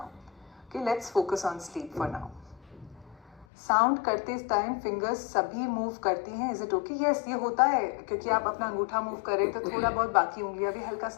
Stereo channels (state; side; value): drops out; right; at 3.5 s